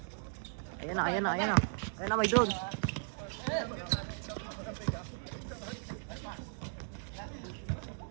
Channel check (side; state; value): left; silent; digital silence